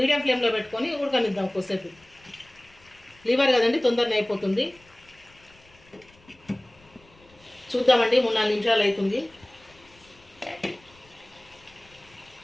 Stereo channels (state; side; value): noise; left; rumble, 28 dB below the sound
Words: ఫ్లేమ్లో పెట్టుకొని ఉడకనిద్దాం కొద్దిసేపు. లివర్ కదండి, తొందరనే అయిపోతుంది. చూద్దామండి, 3-4 నిమిషాలు అవుతుంది.